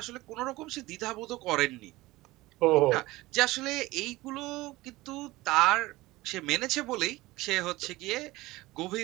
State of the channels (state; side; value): quieter; left; 19.3 dB